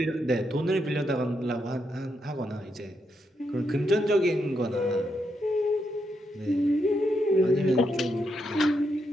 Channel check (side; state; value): both; normal; correlation 0.81